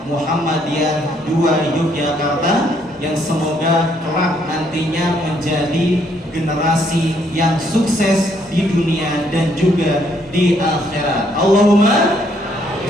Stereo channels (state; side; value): normal; both; correlation 0.69